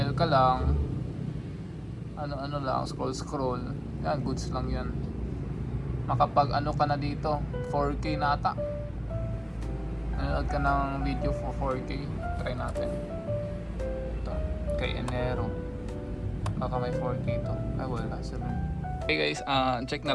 ka lang, ano lang, scroll, yan, goods lang yan. Makapag ka na dito, 4K na ata. Nanood ka ng video for 4K, try natin ito, kay Enero, baka may 4K to. Ay wala, 7. Okay guys, check na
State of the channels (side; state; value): both; identical; correlation 1.00